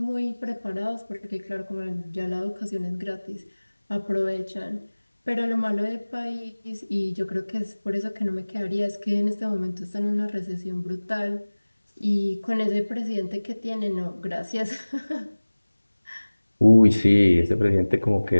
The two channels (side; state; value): both; inverted; correlation -1.00